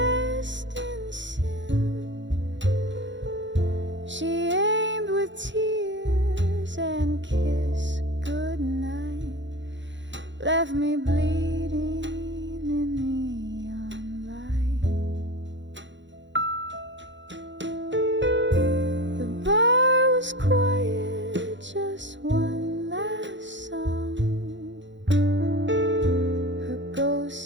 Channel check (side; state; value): left; late; 0.54 ms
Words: in sin. She aimed with tears and kissed goodnight, left me bleeding in neon light. The bar was quiet, just one last song. Her ghost